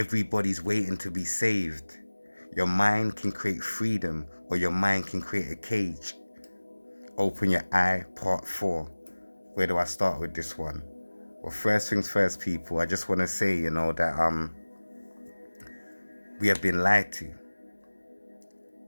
waiting to be saved. Your mind can create freedom, or your mind can create a cage. Open your eye, part 4. Where do I start with this one? Well, first things first, people, I just want to say, that we have been lied to,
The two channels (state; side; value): inverted; both; correlation -1.00